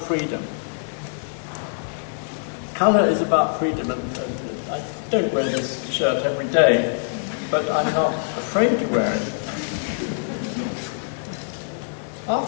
Colour is about freedom, and I don't wear this shirt every day, but I'm not afraid to wear it.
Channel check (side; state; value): right; silent; digital silence